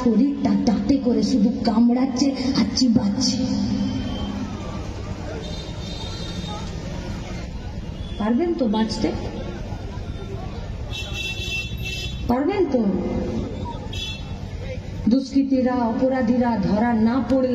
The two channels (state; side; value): identical; both; correlation 1.00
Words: দাঁতে করে শুধু কামড়াচ্ছে আর চিবাচ্ছে। পারবেন তো বাঁচতে? পারবেন তো? দুষ্কৃতীরা অপরাধীরা ধরা না